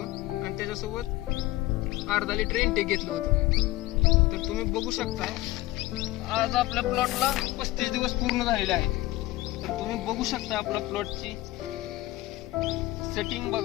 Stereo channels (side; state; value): right; quieter; 18.0 dB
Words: आणि त्याच्यासोबत अर्धा लिटर इनटेक घेतलं होतं. तर तुम्ही बघू शकता आज आपल्या प्लॉटला 35 दिवस पूर्ण झालेले आहेत. तर तुम्ही बघू शकता आपल्या प्लॉटची सेटिंग